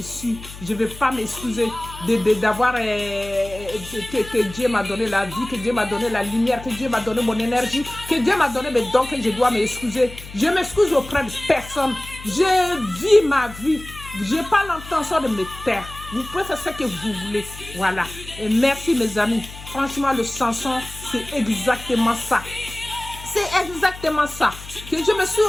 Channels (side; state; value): left; noise; hum, 15 dB below the sound